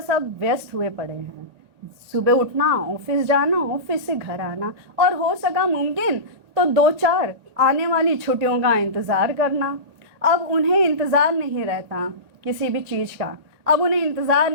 अब व्यस्त हुए पड़े हैं। सुबह उठना, ऑफिस जाना, ऑफिस से घर आना, और हो सका मुमकिन तो 2-4 आने वाली छुट्टियों का इंतज़ार करना। अब उन्हें इंतज़ार नहीं रहता किसी भी चीज़ का। अब उन्हें इंतज़ार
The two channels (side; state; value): left; late; 2.0 ms